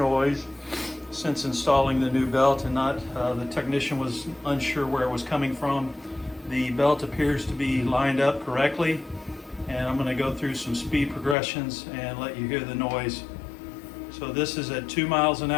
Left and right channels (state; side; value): drops out; right; at 11.4 s